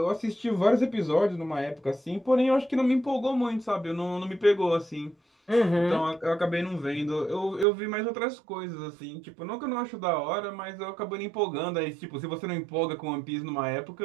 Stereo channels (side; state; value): left; drops out; at 7.7 s